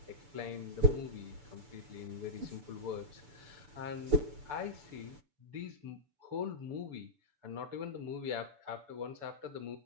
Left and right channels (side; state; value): left; late; 6.9 ms